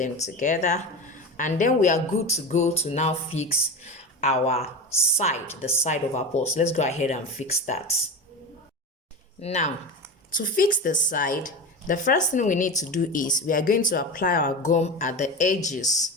together, and then we are good to go to now fix our side, the side of our purse. Let's go ahead and fix that. Now, to fix the side, the first thing we need to do is we are going to apply our gum at the edges.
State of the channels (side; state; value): both; normal; correlation 0.25